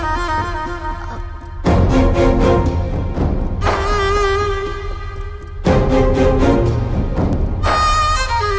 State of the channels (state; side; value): identical; both; correlation 1.00